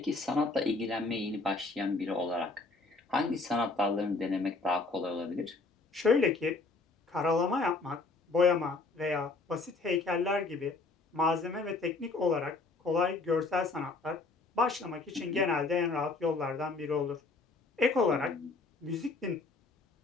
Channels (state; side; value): quieter; right; 3.7 dB